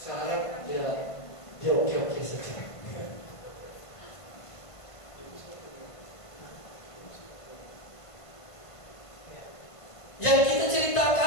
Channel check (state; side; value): late; right; 1.5 ms